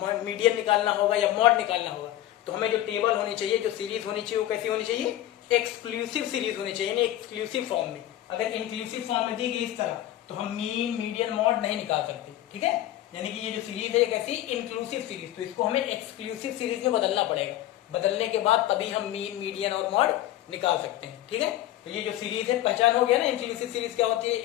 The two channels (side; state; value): right; quieter; 13.7 dB